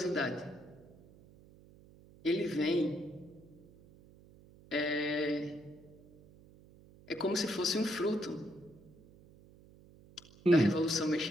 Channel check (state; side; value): noise; right; hum, 24 dB below the sound